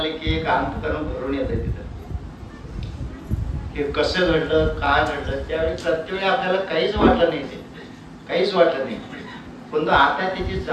की एक अंतकरण भरून येतं. तिथं हे कसं घडलं, काय घडलं, त्यावेळी प्रत्येक आपल्याला काहीच वाटलं नाही, ते काहीच वाटलं नाही. पण आता त्याची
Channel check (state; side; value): identical; both; correlation 1.00